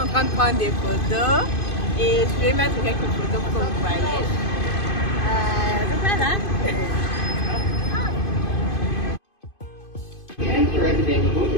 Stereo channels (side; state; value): right; late; 2.5 ms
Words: en train de prendre des photos et je vais mettre quelques photos pour que vous voyez. Donc voilà.